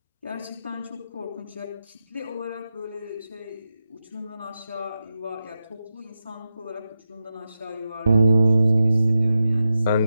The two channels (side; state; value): both; inverted; correlation -0.90